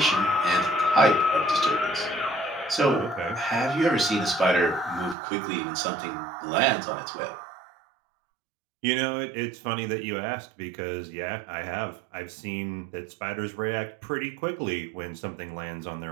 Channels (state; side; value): drops out; left; at 5.2 s